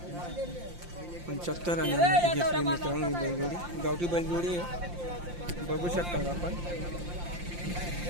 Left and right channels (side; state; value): left; late; 5.7 ms